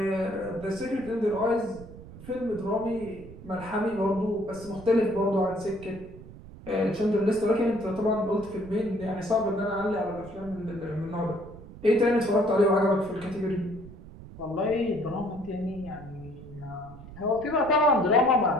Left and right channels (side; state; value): right; noise; rumble, 16 dB below the sound